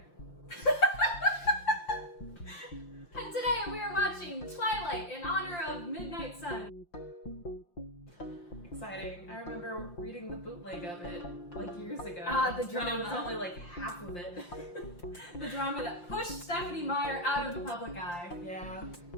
And today we are watching Twilight in honor of Midnight Sun. Exciting. I remember reading the bootleg of it like years ago. The drama. When it was only like half of it. The drama that pushed Stephanie Meyer out of the public eye. Yeah.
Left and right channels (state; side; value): late; right; 5.7 ms